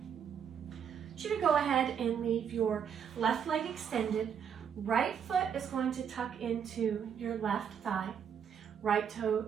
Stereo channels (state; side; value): quieter; left; 7.8 dB